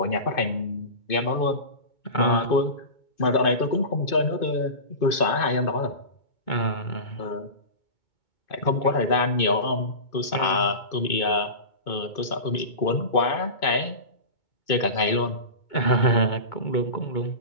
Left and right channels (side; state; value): right; late; 2.5 ms